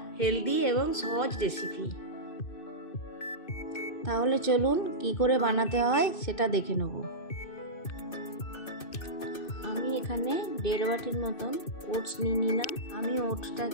হেলদি এবং সহজ রেসিপি। তাহলে চলুন কি করে বানাতে হয় সেটা দেখে নেব। আমি এখানে 1.5 বাটির মতন ওটস নিয়ে নিলাম। আমি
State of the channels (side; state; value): right; late; 2.6 ms